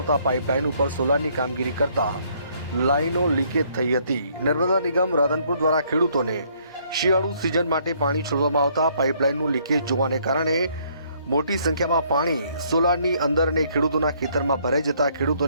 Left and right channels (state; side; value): inverted; both; correlation -0.66